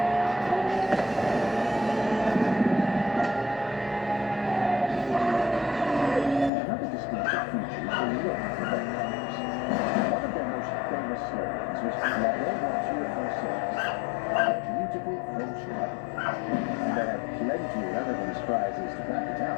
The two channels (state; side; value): drops out; right; at 6.5 s